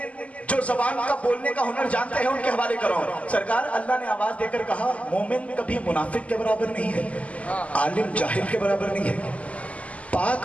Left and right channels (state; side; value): late; right; 0.067 ms